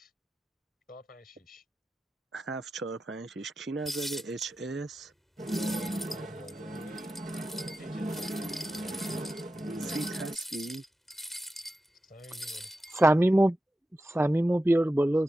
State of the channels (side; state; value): both; normal; correlation 0.92